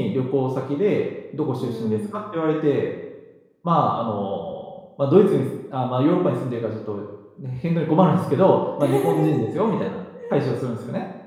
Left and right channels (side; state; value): both; identical; correlation 1.00